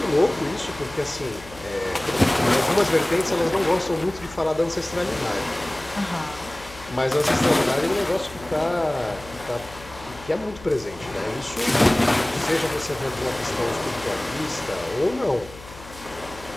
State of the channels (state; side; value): noise; left; hum, 18 dB below the sound